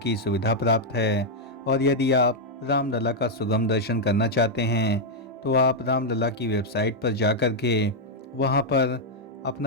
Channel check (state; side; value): normal; both; correlation -0.02